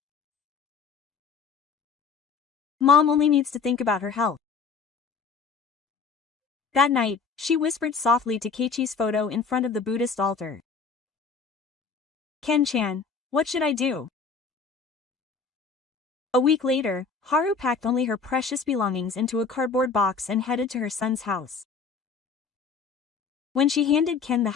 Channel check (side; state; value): right; quieter; 5.2 dB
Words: Mom only needs to think about her health. That night, she whispered softly to Keiichi's photo in front of the Buddhist altar. Ken-chan, what should I do? A week later, Haru packed only her precious belongings into a cardboard box and headed to her son's house. When she handed Ken the